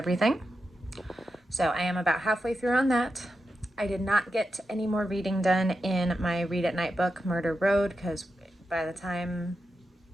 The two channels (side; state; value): both; normal; correlation 0.89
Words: So I am about halfway through on that. I did not get any more reading done in my read at night book, Murder Road, because by the time